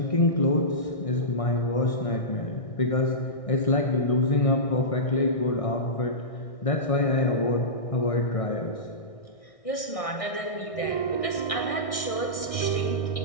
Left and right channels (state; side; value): late; right; 1.6 ms